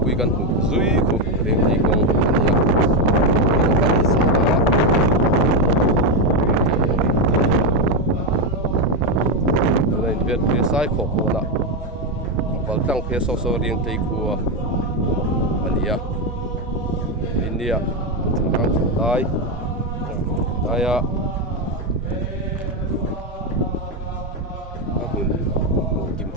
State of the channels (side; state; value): both; normal; correlation 0.07